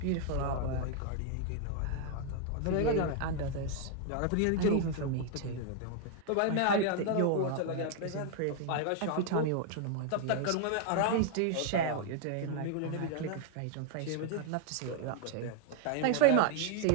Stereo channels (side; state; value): both; different; correlation 0.00